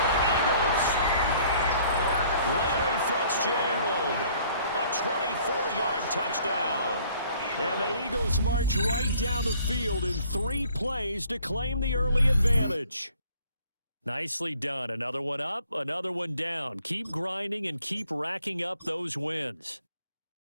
Eagles! Larry Fitzgerald, a 24-yard touchdown. And the Eagles march right down the field in 3 plays to claim the early advantage. Nicely done. Another one up, another one down. Keep grinding and keep racking up those wins.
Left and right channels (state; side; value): inverted; both; correlation -0.58